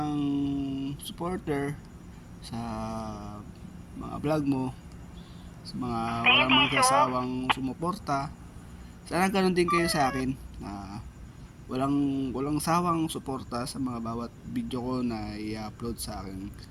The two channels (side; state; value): both; identical; correlation 1.00